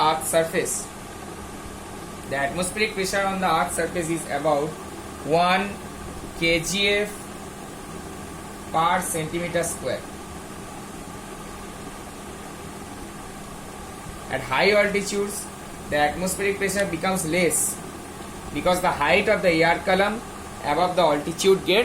earth's surface. The atmospheric pressure on the earth's surface is about 1 kgf per centimeter square. At high altitudes, the atmospheric pressure becomes less because the height of the air column above the altitude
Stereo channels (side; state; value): both; identical; correlation 1.00